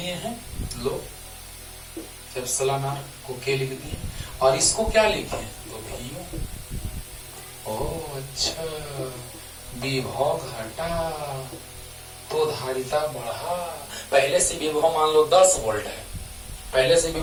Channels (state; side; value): identical; both; correlation 1.00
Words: हैं। लो, एप्सिलॉन R को के लिख दिए, और इसको क्या लिखे? तो भी। ओह अच्छा, विभव घटा तो धारिता बढ़ा। पहले से विभव मान लो 10 वोल्ट है, पहले से